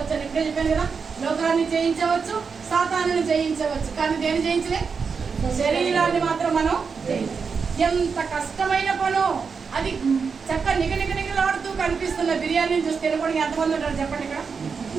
అని ఇప్పుడే చెప్పాను కదా. లోకాన్ని జయించవచ్చు, సాతానుని జయించవచ్చు, కానీ దేని జయించలే? శరీరాన్ని మాత్రం మనం జయించలేం. ఎంత కష్టమైన పనో అది. చక్క నిగనిగలాడుతూ కనిపిస్తున్న బిర్యానీని చూసి తినకుండా ఎంతమంది ఉంటారు చెప్పండి? ఇక్కడ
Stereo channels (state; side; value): quieter; left; 5.5 dB